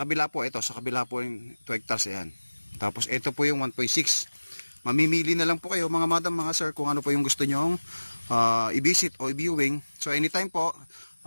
kabila po yung 2 hectares, ayan. Tapos ito po yung 1.6. Mamimili na lang po kayo mga madam, mga sir, kung ano po yung gusto nyong i-visit o i-viewing. So anytime po,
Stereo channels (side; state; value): both; inverted; correlation -1.00